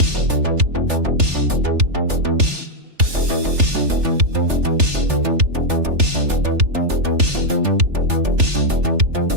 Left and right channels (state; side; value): late; left; 3.4 ms